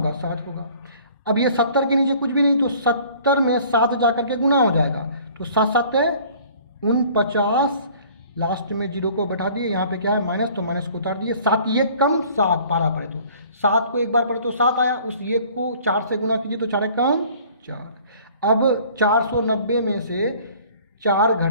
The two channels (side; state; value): both; inverted; correlation -0.51